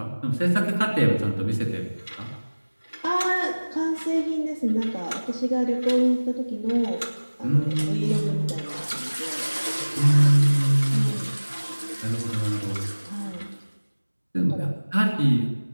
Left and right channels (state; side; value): inverted; both; correlation -1.00